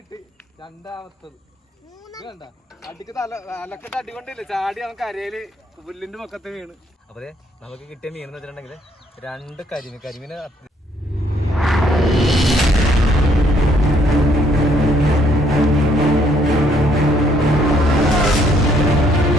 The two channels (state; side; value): normal; both; correlation 0.67